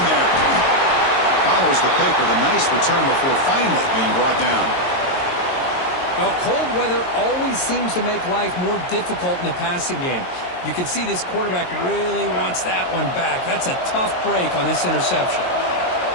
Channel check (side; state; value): right; late; 22 ms